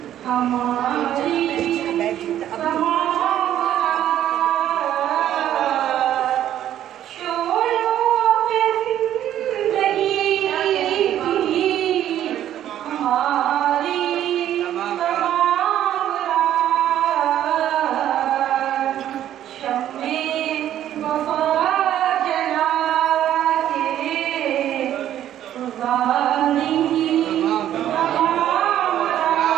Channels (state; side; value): quieter; left; 11.5 dB